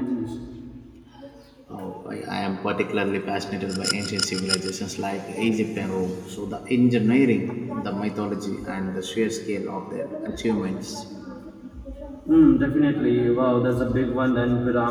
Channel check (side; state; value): both; identical; correlation 1.00